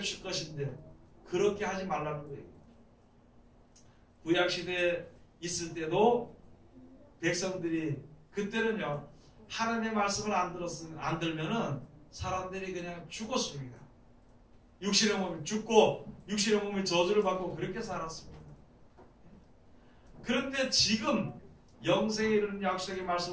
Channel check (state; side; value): identical; both; correlation 1.00